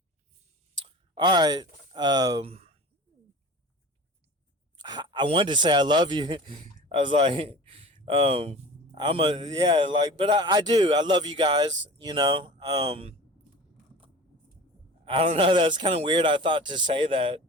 right. I wanted to say I love you. I was like, yeah, like, but I do. I love you guys. I don't know. That's kind of weird. I thought to say that.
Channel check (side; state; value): both; normal; correlation 0.38